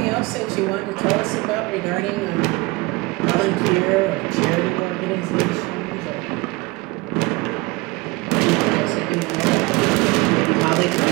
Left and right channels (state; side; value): quieter; left; 23.9 dB